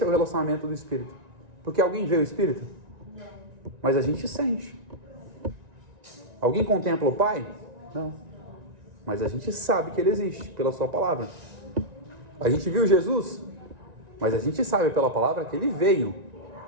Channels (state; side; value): late; left; 1.9 ms